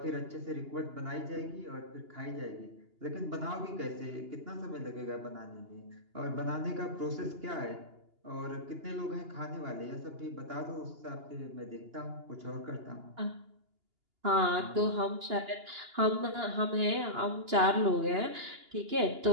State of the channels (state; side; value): late; left; 2.8 ms